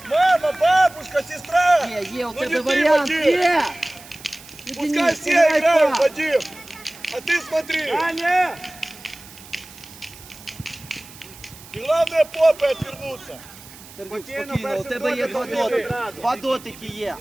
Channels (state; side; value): noise; right; hiss, 19 dB below the sound